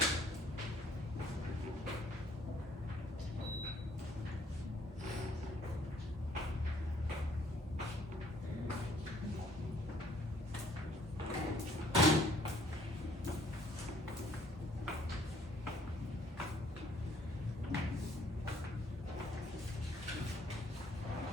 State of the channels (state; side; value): normal; both; correlation 0.61